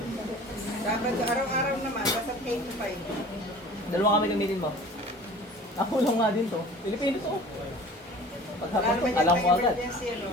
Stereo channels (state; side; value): normal; both; correlation 0.43